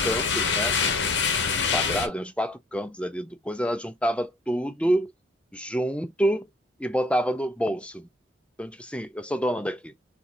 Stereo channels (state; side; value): normal; both; correlation 0.59